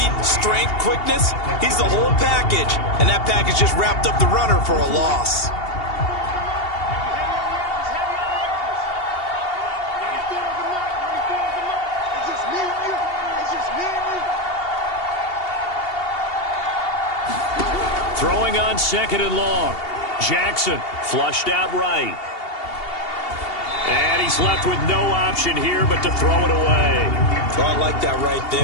strength, quickness, he's the whole package. And that package just wrapped up the runner for a loss. Throwing on 2nd and long. Jackson flushed out right. And he's left with no option here but to throw it away. Oh, I like that right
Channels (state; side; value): late; right; 2.8 ms